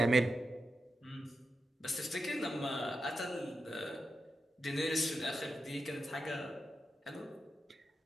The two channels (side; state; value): both; normal; correlation 0.88